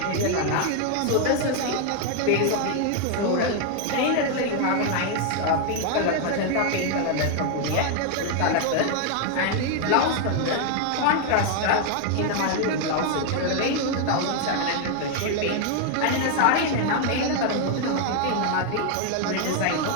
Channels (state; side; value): different; both; correlation 0.00